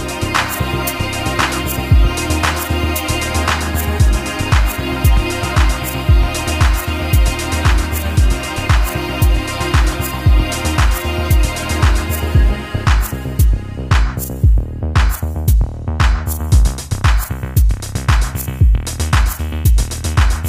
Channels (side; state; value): both; identical; correlation 1.00